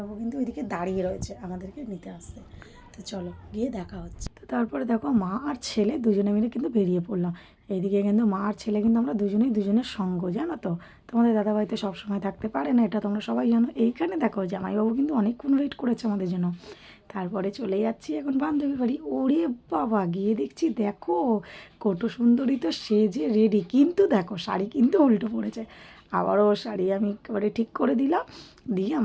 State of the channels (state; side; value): identical; both; correlation 1.00